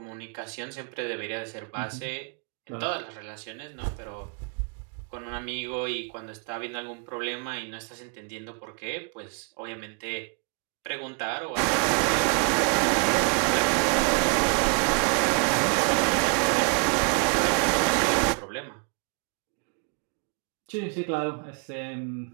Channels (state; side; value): quieter; left; 36.5 dB